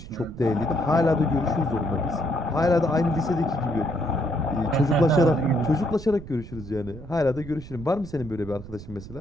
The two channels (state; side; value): noise; right; rumble, 14 dB below the sound